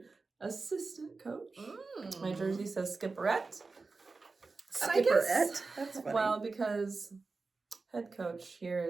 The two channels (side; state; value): left; quieter; 4.0 dB